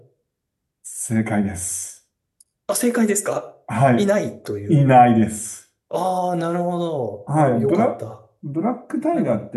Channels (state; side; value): identical; both; correlation 1.00